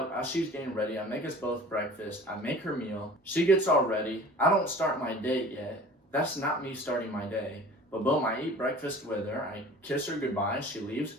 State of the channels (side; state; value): both; normal; correlation 0.43